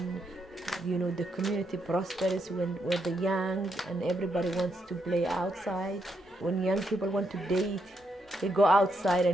the community prospers, when the young and everybody wants to play outside. When young people want to date, they go outside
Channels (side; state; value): both; normal; correlation 0.79